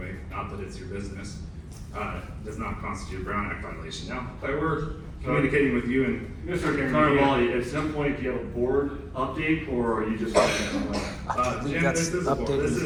not that it's your business, does not constitute a Brown Act violation. Now, if I were communicating with you and Mr. Carnevale, at some point, do you have a board update, or are you just? Jim, this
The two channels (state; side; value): identical; both; correlation 1.00